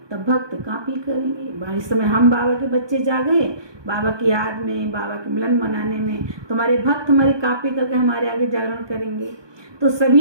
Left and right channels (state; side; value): late; left; 1.2 ms